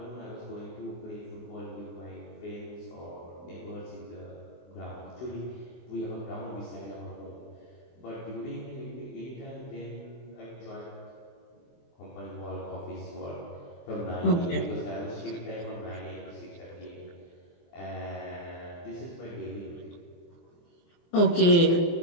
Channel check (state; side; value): late; right; 24 ms